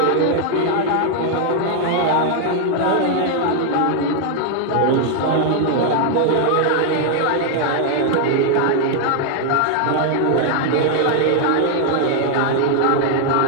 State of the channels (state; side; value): different; both; correlation 0.00